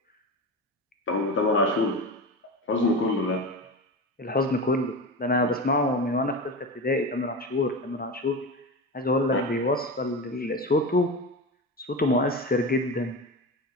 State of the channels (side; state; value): both; normal; correlation 0.25